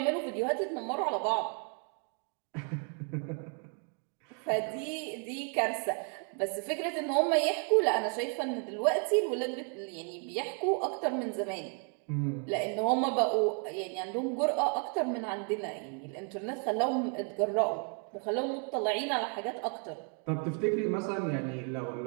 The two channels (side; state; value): left; quieter; 39.6 dB